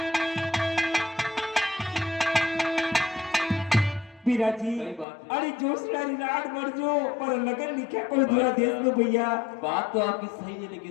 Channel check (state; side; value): drops out; right; at 5.1 s